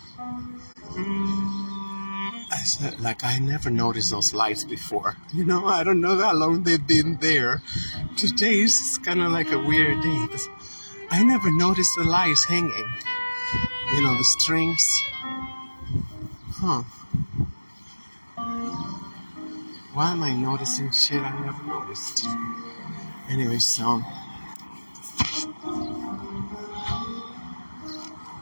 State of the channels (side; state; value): both; inverted; correlation -1.00